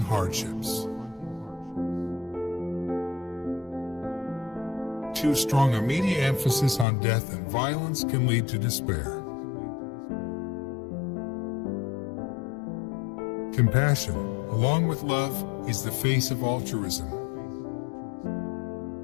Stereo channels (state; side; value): drops out; right; at 6.9 s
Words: Too strong a media emphasis on death and violence can lead to despair. Compassion, along with love, is the face of altruism.